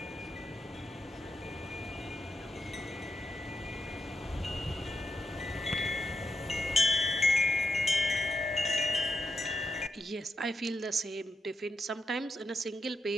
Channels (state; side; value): normal; both; correlation 0.84